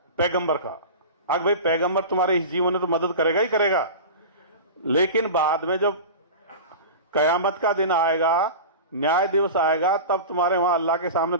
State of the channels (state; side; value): inverted; both; correlation -0.31